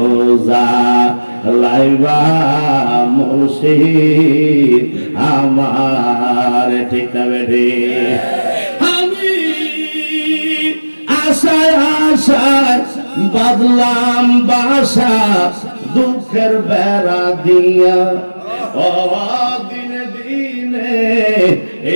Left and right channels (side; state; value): both; inverted; correlation -1.00